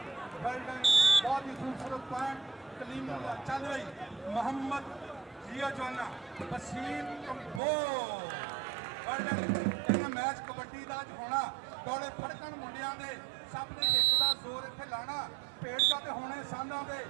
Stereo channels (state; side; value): drops out; left; at 7.6 s